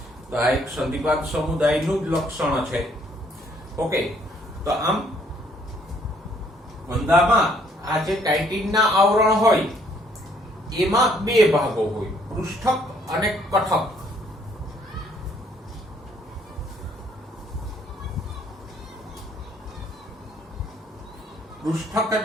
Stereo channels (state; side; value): normal; both; correlation 0.65